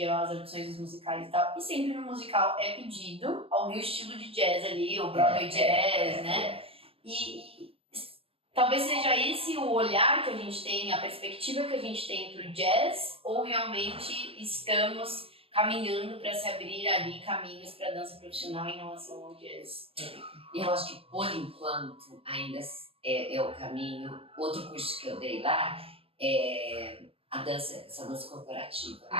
as opções dos musicais e tal, e sempre no musical é pedido algum estilo de jazz ali, o Broadway jazz, né? E talvez seja esse o olhar que a gente tem, a perspectiva que a gente tem pro jazz, ou realmente estamos caminhando para se abrir ali caminhos para dança profissional em relação ao jazz? Eu acho que, por enquanto, ainda é o caminho. Outro curso que eu dei lá é essa dança corporativa, a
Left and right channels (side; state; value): left; late; 0.28 ms